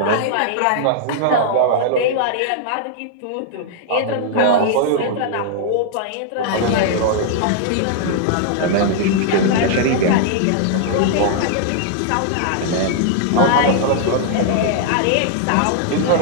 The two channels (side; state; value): both; different; correlation -0.01